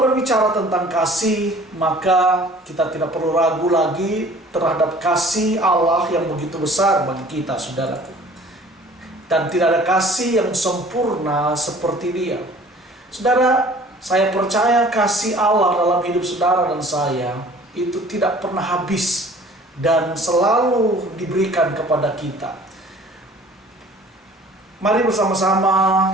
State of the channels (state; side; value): normal; both; correlation 0.50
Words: berbicara tentang kasih, maka kita tidak perlu ragu lagi terhadap kasih Allah yang begitu besar bagi kita, saudaraku. Dan tidak ada kasih yang sempurna seperti Dia. Saudara, saya percaya kasih Allah dalam hidup saudara dan saya itu tidak pernah habis dan selalu diberikan kepada kita. Mari bersama-sama